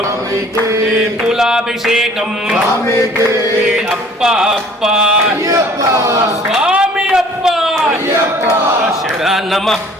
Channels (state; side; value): normal; both; correlation 0.52